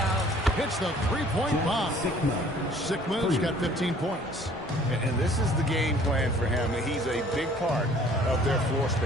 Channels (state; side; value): normal; both; correlation 0.55